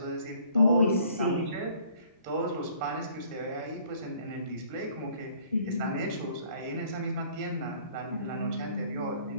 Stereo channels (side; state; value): both; inverted; correlation -0.57